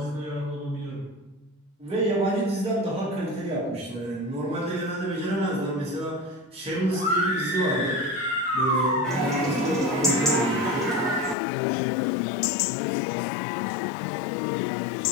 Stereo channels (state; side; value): drops out; right; at 11.4 s